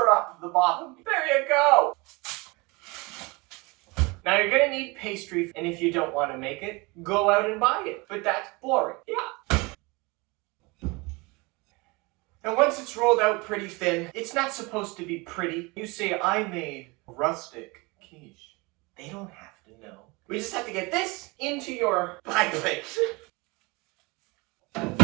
up the bottom. There you go! Now you're gonna need pastry, and if you don't want to make it, go out and buy it. But that's boring. Yeah. And once it's rolled out pretty thin, it's not supposed to be pretty. You say, I made rustic quiche. They don't have to know. We just have to get this into your pie plate.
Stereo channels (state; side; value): quieter; left; 25.9 dB